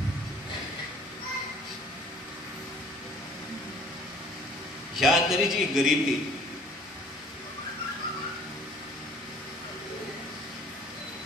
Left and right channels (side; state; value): both; normal; correlation 0.52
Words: ह्या तरेची गरिबी